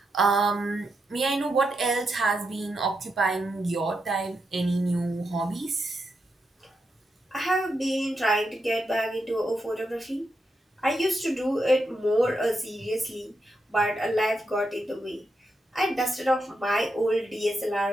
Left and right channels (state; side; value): normal; both; correlation 0.84